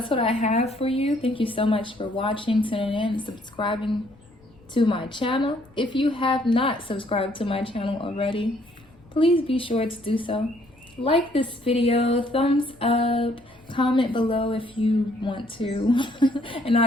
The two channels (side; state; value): left; noise; rumble, 28 dB below the sound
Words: what I have for you. Thank you so much for watching, tuning in, and subscribing to my channel. If you have not subscribed to my channel already, please be sure to do so. Like this video, thumbs up, comment below if you want to. And